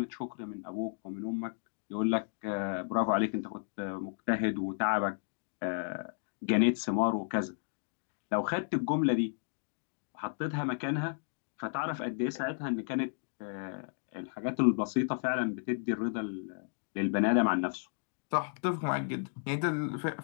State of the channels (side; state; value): right; silent; digital silence